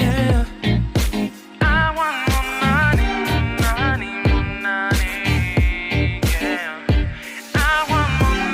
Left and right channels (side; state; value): both; identical; correlation 1.00